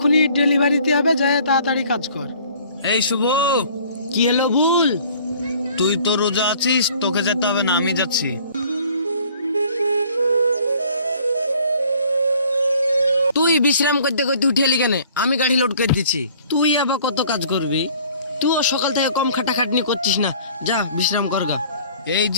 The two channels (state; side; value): inverted; both; correlation -0.54